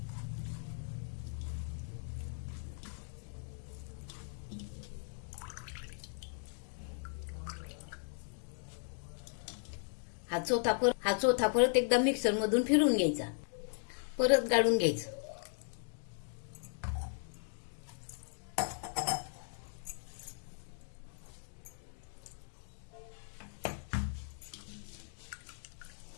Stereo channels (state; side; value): silent; right; 53 dB below the other